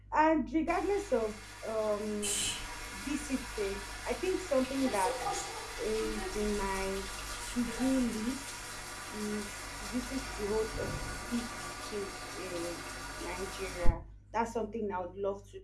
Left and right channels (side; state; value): both; identical; correlation 1.00